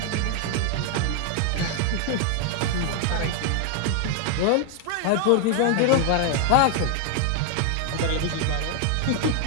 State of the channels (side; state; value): both; different; correlation 0.00